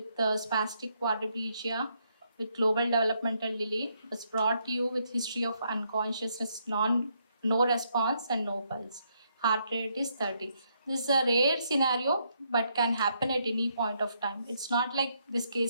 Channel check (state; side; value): inverted; both; correlation -0.75